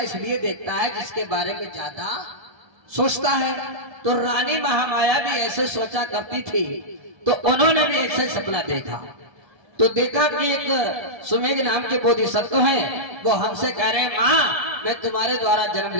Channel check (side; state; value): left; late; 1.3 ms